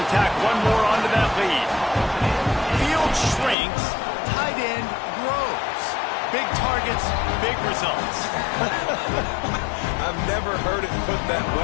tack one more onto that lead. Field shrinks, tight end grows. Big targets, big results. I've never heard it put that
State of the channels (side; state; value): right; drops out; at 3.6 s